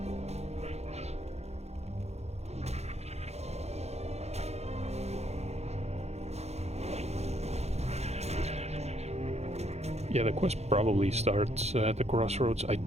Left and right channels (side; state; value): left; late; 0.31 ms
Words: Yeah, the quest probably starts at the crossroads. I